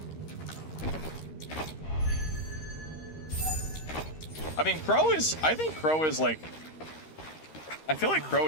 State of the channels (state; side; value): late; right; 13 ms